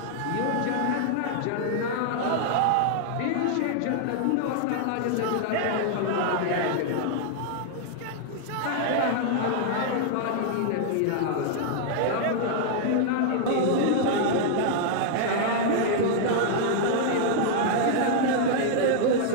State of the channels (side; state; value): both; different; correlation -0.01